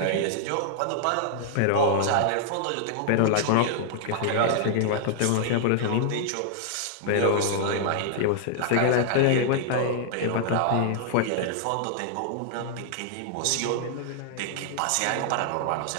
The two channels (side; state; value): both; different; correlation -0.01